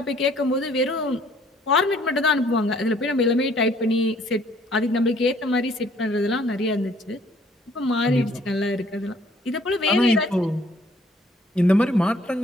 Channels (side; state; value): both; normal; correlation 0.61